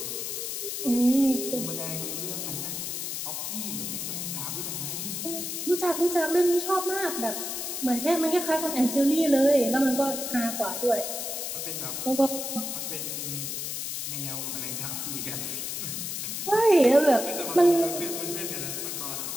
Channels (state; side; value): noise; left; hiss, 4 dB below the sound